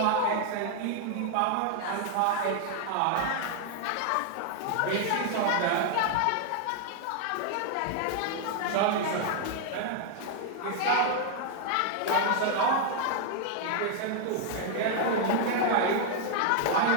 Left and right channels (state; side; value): different; both; correlation 0.00